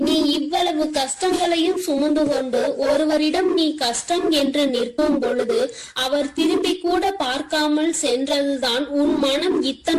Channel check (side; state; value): both; identical; correlation 1.00